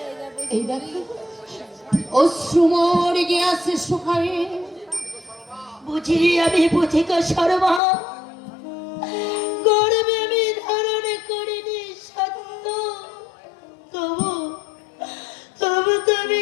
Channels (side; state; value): right; drops out; at 7.8 s